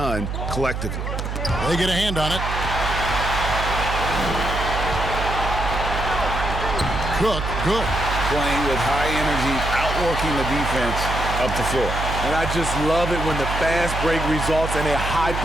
collectively. They get a hand on it. Cook, good. Playing with high energy, outworking the defense up the floor. And I just love it when the fast break results in a high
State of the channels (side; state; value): right; noise; hum, 4 dB below the sound